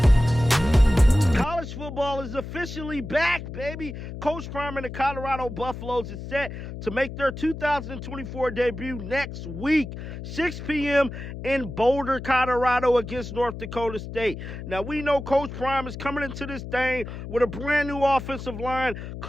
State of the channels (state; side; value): noise; left; hum, 9 dB below the sound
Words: Football is officially back, baby. Coach Prime and the Colorado Buffaloes is set to make their 2024 debut next week, 6 p.m. in Boulder, Colorado against North Dakota State. Now, we know Coach Prime is coming into this thing with a brand new offensive line,